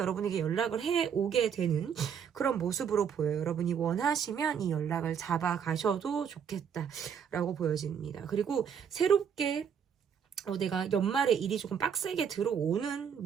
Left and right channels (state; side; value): quieter; left; 7.6 dB